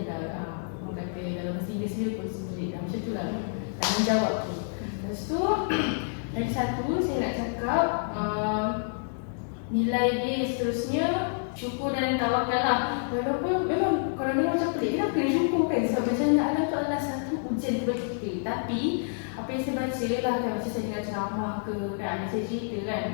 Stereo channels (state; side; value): silent; right; digital silence